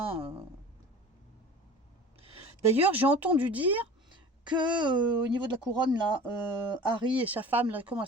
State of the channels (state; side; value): normal; both; correlation 0.40